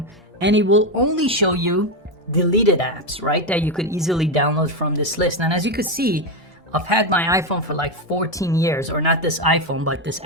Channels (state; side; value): normal; both; correlation 0.09